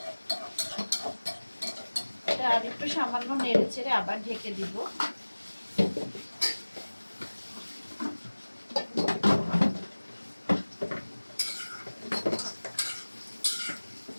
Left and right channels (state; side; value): inverted; both; correlation -1.00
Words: এটা আর একটু সামান্য নেড়ে চেড়ে আবার ঢেকে দিব।